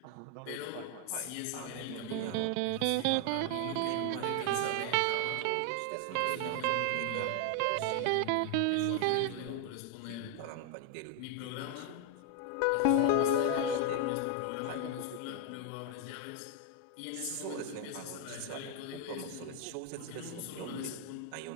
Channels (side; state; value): both; different; correlation 0.00